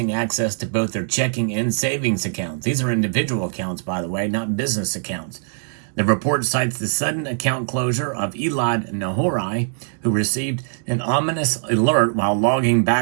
access to both their checking and savings accounts. These are individual accounts, by the way, not business accounts. The report cites the sudden account closure of Elad Nahorai, who received an ominous alert while logging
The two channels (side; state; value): left; silent; 65 dB below the other